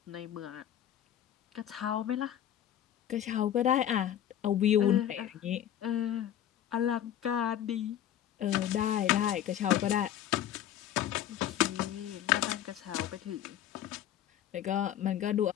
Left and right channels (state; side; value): quieter; right; 11.0 dB